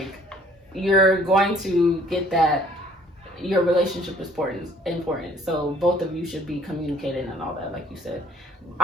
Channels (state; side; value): normal; both; correlation 0.55